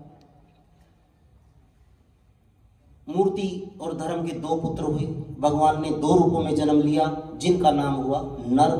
मूर्ति और धर्म के दो पुत्र हुए। भगवान ने दो रूपों में जन्म लिया, जिनका नाम हुआ नर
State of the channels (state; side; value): identical; both; correlation 1.00